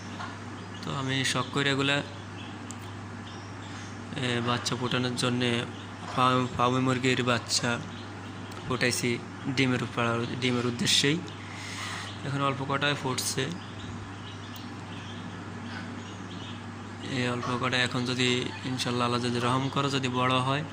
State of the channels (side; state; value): both; identical; correlation 1.00